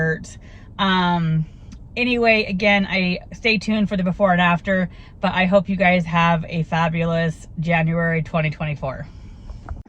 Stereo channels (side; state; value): both; identical; correlation 1.00